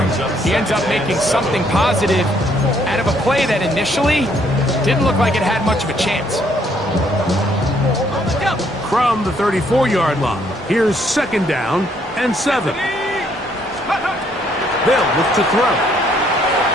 He ends up making something positive out of a play that initially didn't look like it had much of a chance. From the 34-yard line, here's second down and 7. They'll look to throw.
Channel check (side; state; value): both; normal; correlation 0.68